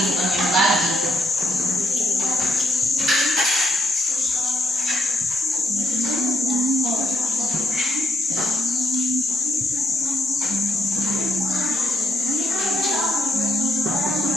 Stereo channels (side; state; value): both; normal; correlation 0.76